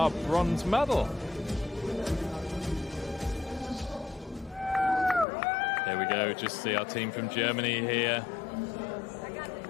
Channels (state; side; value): drops out; right; at 5.2 s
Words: bronze medal. There we go, just see our team from Germany here.